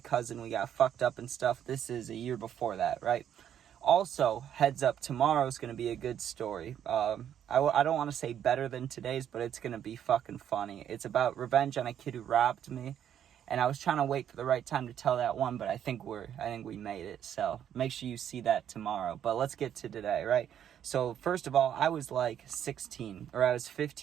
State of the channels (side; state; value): left; quieter; 9.7 dB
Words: we got fucked up and stuff. This is a year before that, right? Also, heads up, tomorrow's going to be a good story. I don't want to say better than today's, but it's going to be fucking funny. It's about revenge on a kid who robbed me. And I was trying to wait for the right time to tell that one, but I think we made it. So make sure you see that tomorrow. But let's get to today, right? So first of all, I was like 16, or I was